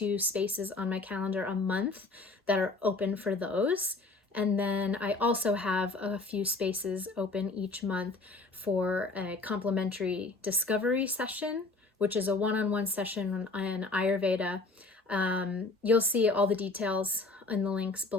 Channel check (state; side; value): quieter; right; 3.4 dB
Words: spaces on my calendar a month that are open for those. And then I also have a few spaces open each month for a complimentary discovery session, which is a one-on-one session on Ayurveda. You'll see all the details in the links